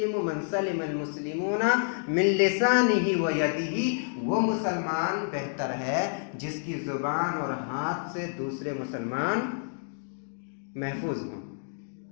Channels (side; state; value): right; silent; digital silence